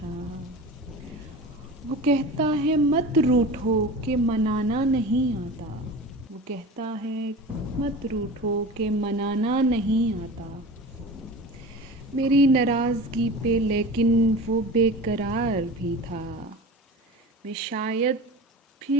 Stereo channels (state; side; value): normal; both; correlation 0.34